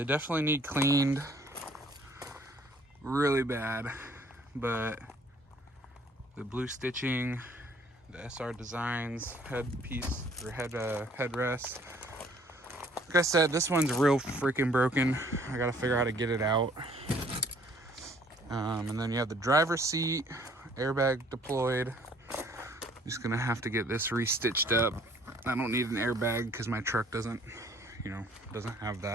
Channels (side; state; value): both; normal; correlation 0.59